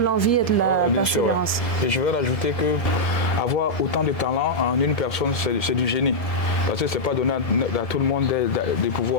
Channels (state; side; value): late; right; 1.7 ms